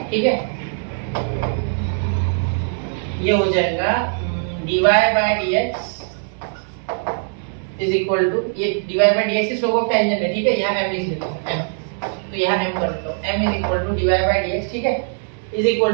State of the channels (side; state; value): left; silent; 63 dB below the other